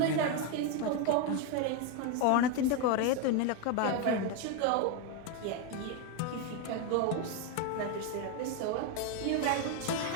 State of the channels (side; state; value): both; different; correlation 0.02